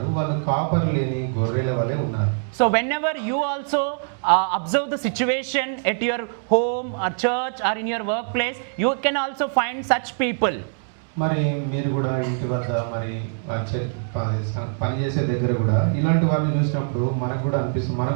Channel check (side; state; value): left; silent; digital silence